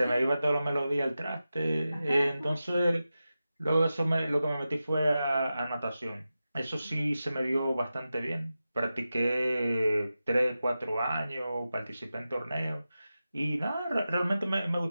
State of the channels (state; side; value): inverted; both; correlation -0.93